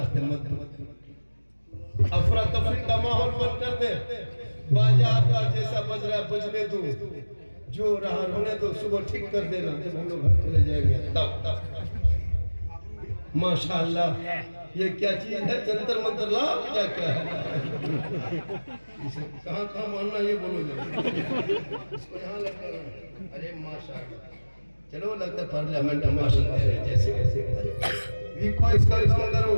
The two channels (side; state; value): both; inverted; correlation -1.00